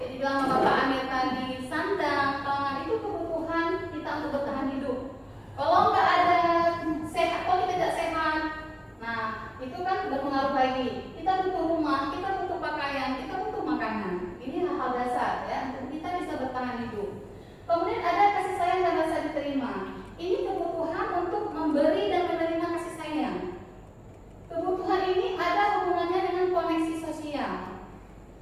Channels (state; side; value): identical; both; correlation 1.00